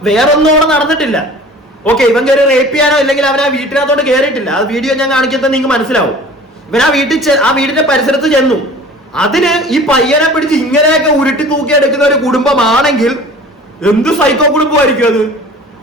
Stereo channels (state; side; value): normal; both; correlation 0.44